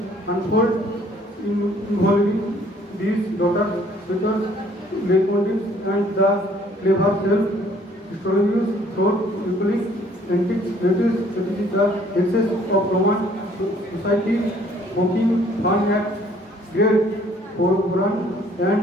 unfold involving these daughters, sisters, leitmotifs, and the clever self-historians through equally antiques. It is the excess of Roman society poking fun at great foreground and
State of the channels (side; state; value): both; normal; correlation 0.59